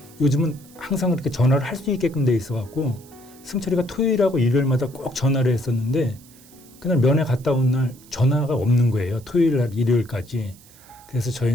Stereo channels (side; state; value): right; noise; hiss, 24 dB below the sound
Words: 요즘은 항상 그렇게 전화를 할 수 있게끔 돼 있어갖고 승철이가 토요일하고 일요일마다 꼭 전화를 했었는데 그날 면회 갔다 온 날 전화가 없는 거예요. 토요일 날 일요일까지. 그래서